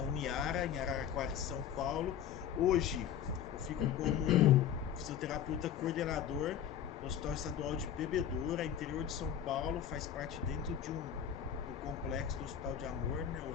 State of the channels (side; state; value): right; quieter; 9.3 dB